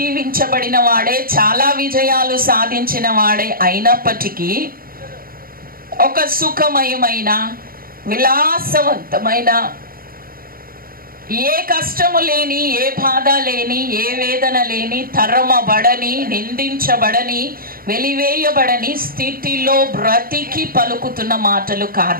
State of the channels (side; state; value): left; late; 0.42 ms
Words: వాడే, చాలా విజయాలు సాధించిన వాడే అయినప్పటికీ ఒక సుఖమయమైన, విలాసవంతమైన, ఏ కష్టము లేని, ఏ బాధ లేని, ఏ వేదన లేని, తరమబడని, నిందించబడని, వెలివేయబడని స్థితిలో బ్రతికి పలుకుతున్న మాటలు